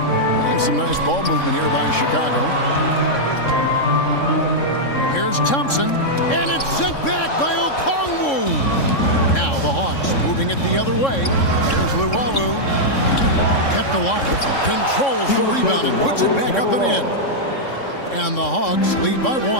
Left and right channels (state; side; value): late; right; 3.6 ms